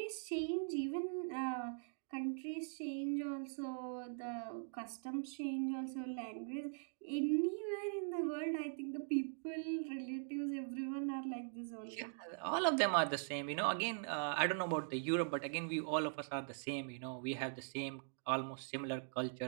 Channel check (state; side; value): silent; left; digital silence